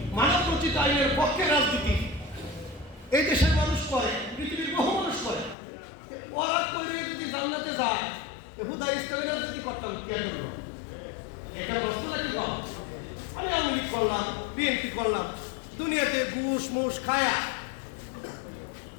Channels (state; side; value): drops out; right; at 5.6 s